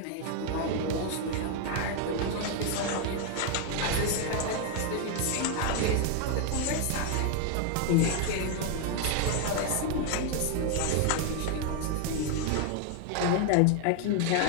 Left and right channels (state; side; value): different; both; correlation 0.01